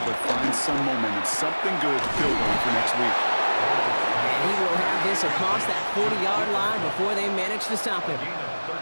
but find some momentum, something good to build on for next week. And he will have this across that 40-yard line before they manage to stop him. Gain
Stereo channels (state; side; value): inverted; both; correlation -1.00